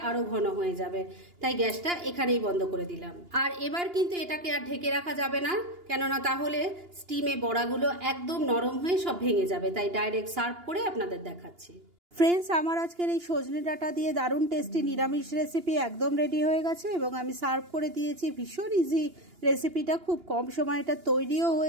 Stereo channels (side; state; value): left; late; 2.8 ms